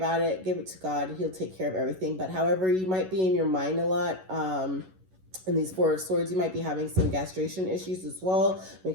it. Give it to God. He'll take care of everything. But however, you might be in your mind a lot. In these Four of Swords, you might be having some gastration issues as well.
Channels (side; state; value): left; late; 11 ms